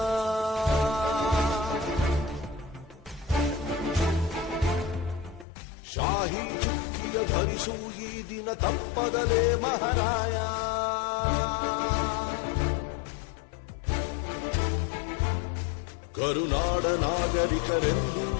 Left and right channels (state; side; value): drops out; right; at 5.5 s